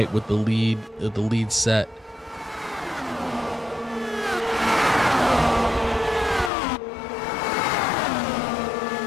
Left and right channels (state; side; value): drops out; right; at 6.5 s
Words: with the lead set.